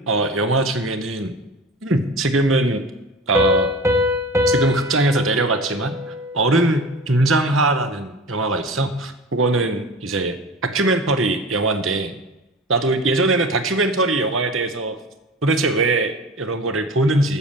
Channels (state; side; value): normal; both; correlation 0.35